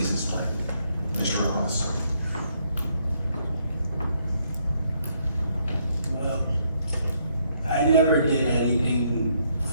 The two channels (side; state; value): both; inverted; correlation -0.72